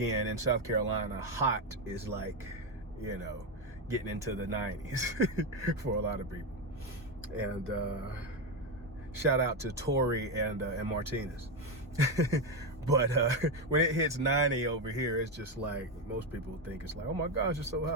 in South Carolina, hot is like, you know, getting into the 90s for a lot of people. And shout out to Tori and Martinez. But when it hits 90 over here, it's just like, most people think it's like, oh my gosh, it's so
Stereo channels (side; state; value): both; normal; correlation 0.09